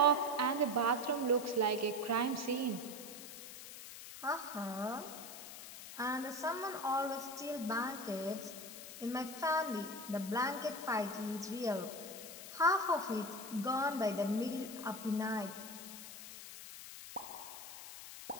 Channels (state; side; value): noise; left; hiss, 12 dB below the sound